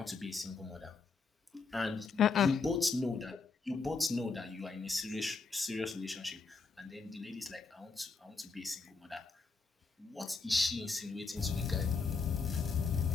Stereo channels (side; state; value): right; quieter; 4.5 dB